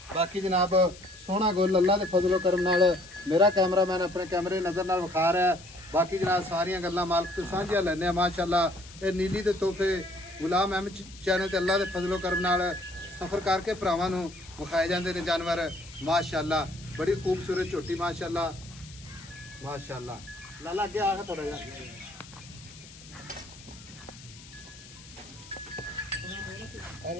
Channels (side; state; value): left; noise; hiss, 19 dB below the sound